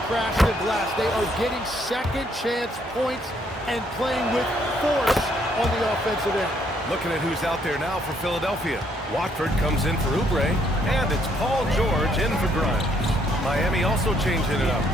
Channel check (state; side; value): normal; both; correlation 0.69